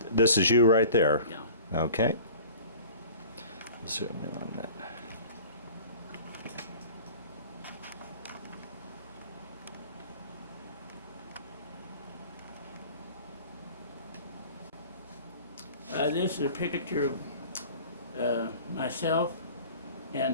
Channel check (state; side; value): inverted; both; correlation -0.44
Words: this is you right there. Yeah. Okay. Zoom in on that. This is a picture of myself